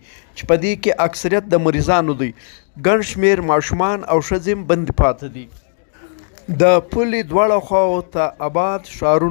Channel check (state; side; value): silent; right; digital silence